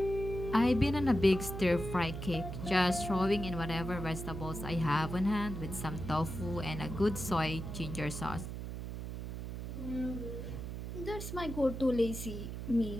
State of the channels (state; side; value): noise; right; hum, 6 dB below the sound